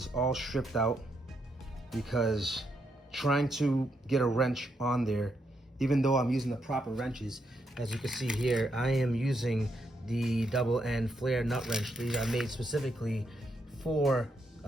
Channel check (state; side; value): normal; both; correlation 0.79